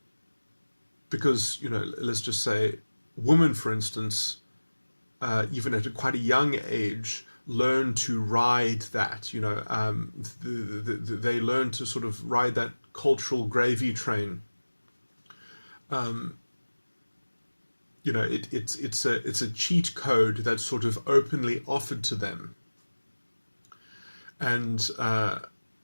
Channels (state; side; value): inverted; both; correlation -1.00